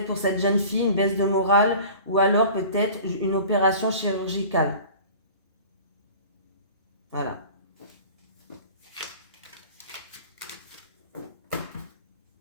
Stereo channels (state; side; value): inverted; both; correlation -0.42